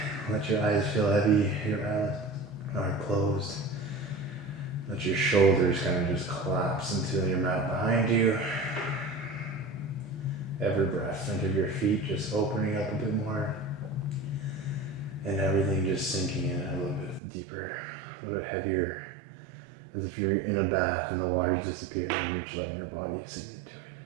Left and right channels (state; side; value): drops out; left; at 17.2 s